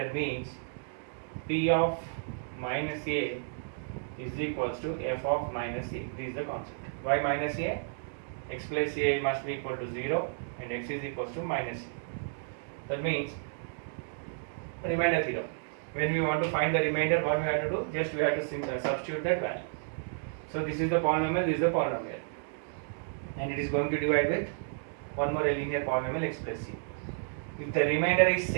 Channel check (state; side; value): silent; left; digital silence